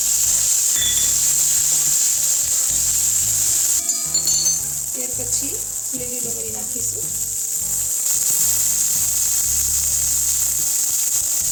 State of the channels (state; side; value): identical; both; correlation 1.00